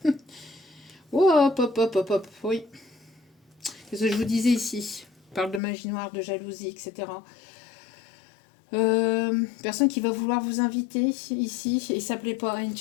Oh, hop, hop, hop, hop, hop, oui. Qu'est-ce que je vous disais ici? On parle de magie noire, de jalousie, etc. Personne qui va vouloir vous inviter ici, et ça plaît pas à une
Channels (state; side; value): drops out; right; at 5.6 s